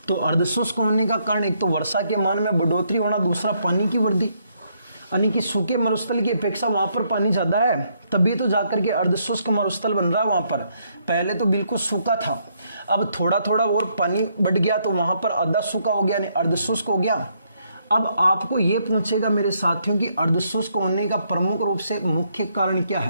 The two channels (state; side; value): inverted; both; correlation -0.73